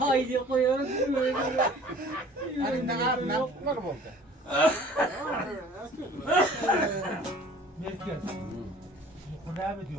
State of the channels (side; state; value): both; normal; correlation 0.48